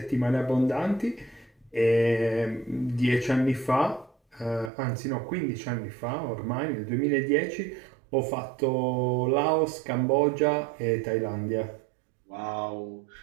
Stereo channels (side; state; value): left; drops out; at 4.7 s